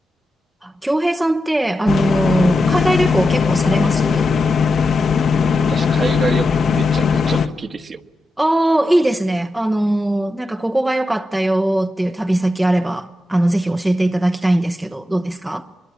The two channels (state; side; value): normal; both; correlation 0.89